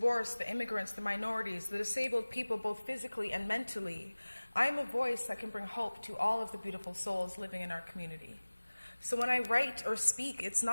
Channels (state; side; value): inverted; both; correlation -1.00